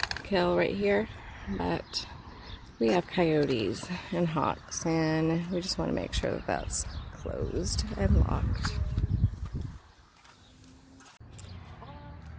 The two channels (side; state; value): both; identical; correlation 1.00